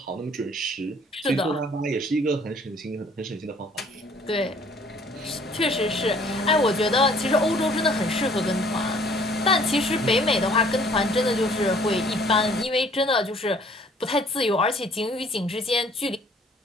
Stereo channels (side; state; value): both; normal; correlation 0.57